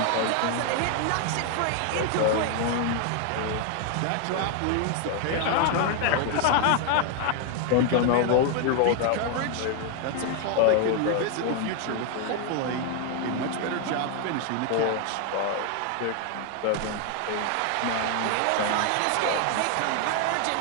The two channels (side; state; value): both; different; correlation 0.01